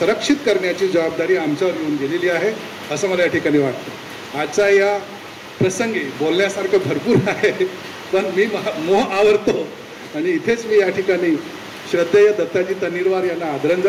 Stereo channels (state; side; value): identical; both; correlation 1.00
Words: करण्याची जबाबदारी आमच्यावर येऊन गेलेली आहे असं मला या ठिकाणी वाटतं. आजच्या या प्रसंगी बोलण्यासारखं भरपूर आहे, पण मी मोह आवरतो आणि इथेच मी या ठिकाणी श्रद्धेय दत्ताजी तन्नीरवार यांना